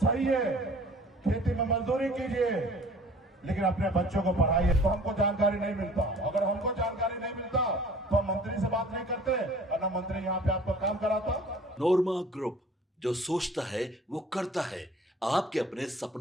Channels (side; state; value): both; normal; correlation 0.49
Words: है, खेती में मजदूरी कीजिए, लेकिन अपने बच्चों को पढ़ाइए। तो हमको जानकारी नहीं मिलता, अगर हमको जानकारी नहीं मिलता तो हम मंत्री से बात नहीं करते और ना मंत्री यहाँ पे आपको काम कराता। नोरमा ग्रुप, जो सोचता है वो करता है। आपके अपने